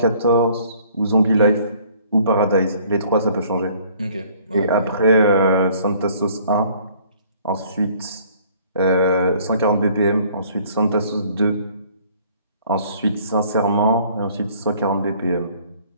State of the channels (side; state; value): both; inverted; correlation -0.57